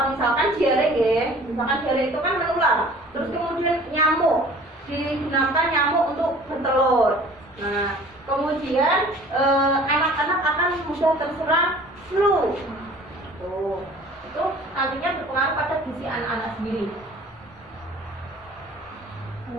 Misalkan diare ya, misalkan diare itu kan menular. Terus kemudian nyamuk, digunakan nyamuk untuk bertelur. Nah, kemudian anak-anak akan mudah terserang flu. Tuh, itu nantinya berpengaruh pada gizi anak-anak sendiri.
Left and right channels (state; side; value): normal; both; correlation 0.48